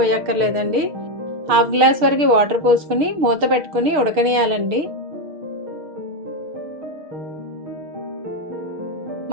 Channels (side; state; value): left; late; 6.7 ms